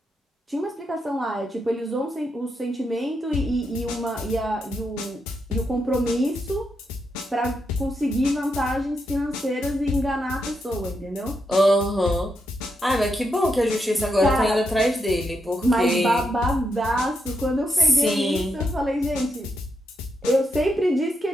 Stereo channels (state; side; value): normal; both; correlation 0.82